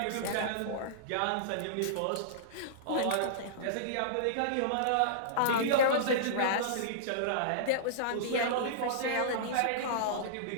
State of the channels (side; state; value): both; different; correlation -0.03